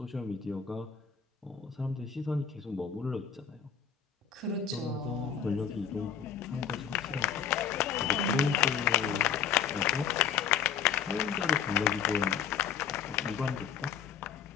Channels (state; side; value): quieter; right; 7.8 dB